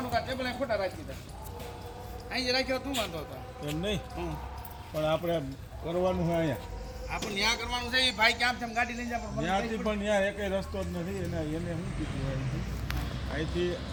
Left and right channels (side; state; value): both; identical; correlation 1.00